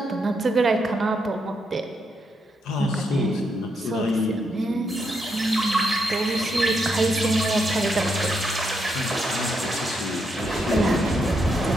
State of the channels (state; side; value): normal; both; correlation 0.80